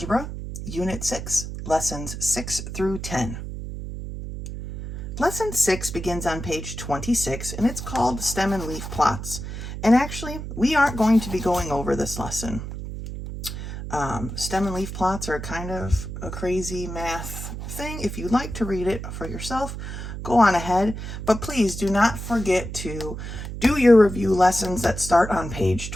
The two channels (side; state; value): right; noise; hum, 7 dB below the sound